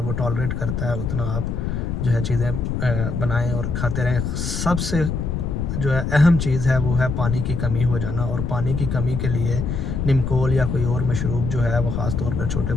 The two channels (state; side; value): noise; left; rumble, 2 dB below the sound